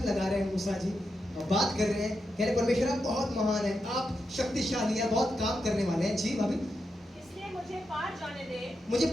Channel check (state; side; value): normal; both; correlation 0.86